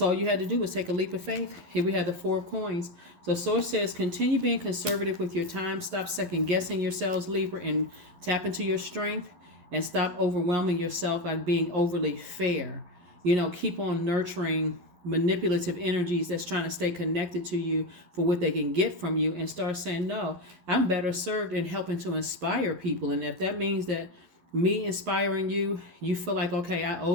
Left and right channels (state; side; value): late; left; 11 ms